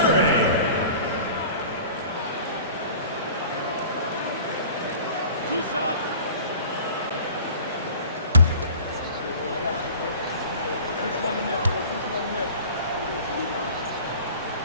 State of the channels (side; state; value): both; inverted; correlation -0.42